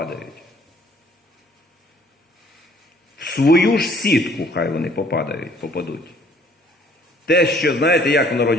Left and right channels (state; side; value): normal; both; correlation 0.60